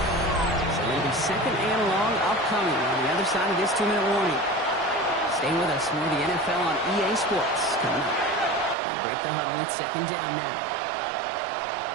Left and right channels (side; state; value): left; drops out; at 8.8 s